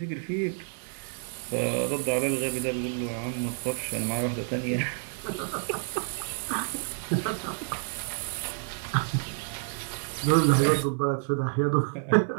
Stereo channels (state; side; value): silent; left; digital silence